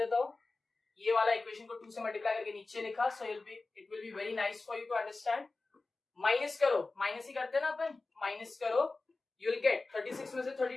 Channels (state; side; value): quieter; right; 3.5 dB